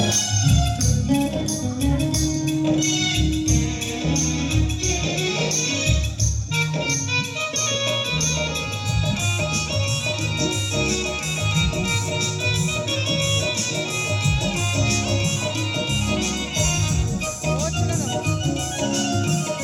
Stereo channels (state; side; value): identical; both; correlation 1.00